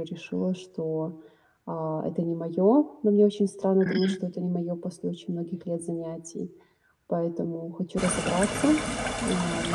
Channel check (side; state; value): both; identical; correlation 1.00